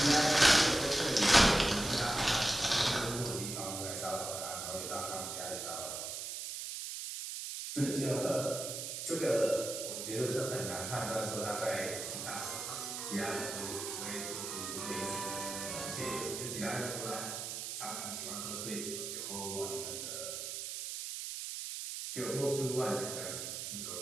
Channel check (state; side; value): noise; right; hiss, 5 dB below the sound